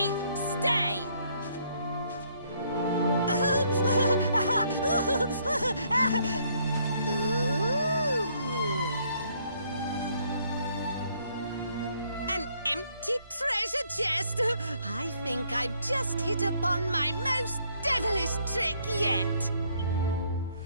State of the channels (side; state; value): both; inverted; correlation -0.67